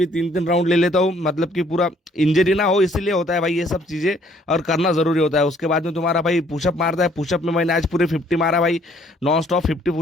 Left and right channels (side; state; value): both; normal; correlation 0.62